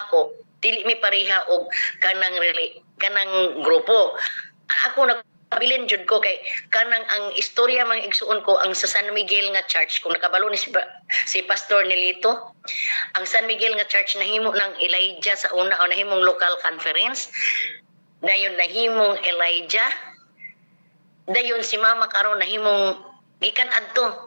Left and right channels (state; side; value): inverted; both; correlation -1.00